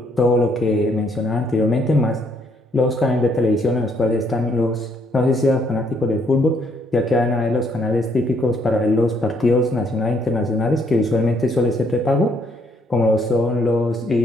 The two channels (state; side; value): normal; both; correlation 0.69